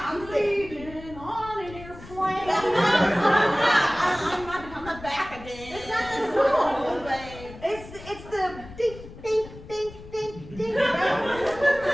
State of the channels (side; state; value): left; noise; rumble, 16 dB below the sound